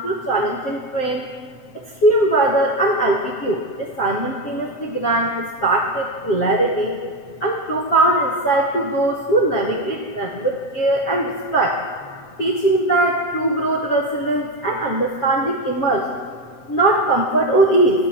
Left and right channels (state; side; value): late; right; 7.7 ms